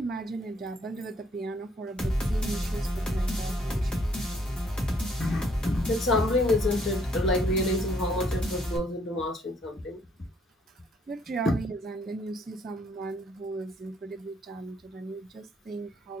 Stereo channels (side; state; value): both; normal; correlation 0.66